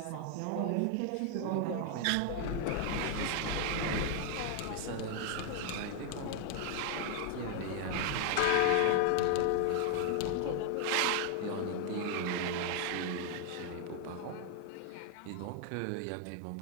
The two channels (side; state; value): both; different; correlation 0.00